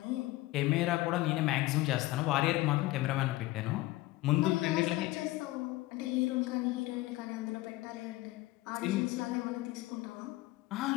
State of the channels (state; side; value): quieter; right; 18.8 dB